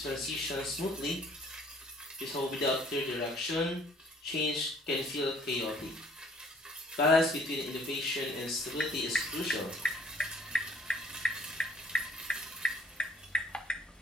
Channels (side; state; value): both; normal; correlation 0.58